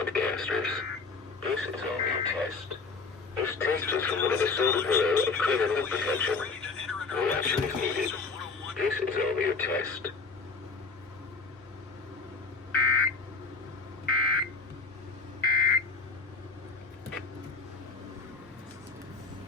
This is only a test. This test is from one of the Solar Bureau of Criminal Protection. No action is needed. This is only a test.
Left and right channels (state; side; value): quieter; right; 4.2 dB